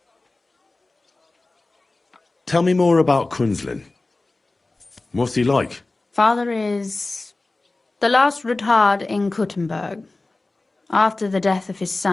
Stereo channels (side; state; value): right; quieter; 3.2 dB